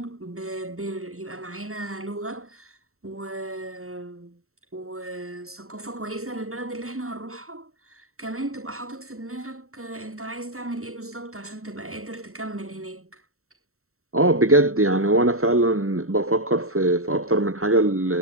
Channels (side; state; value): left; late; 0.63 ms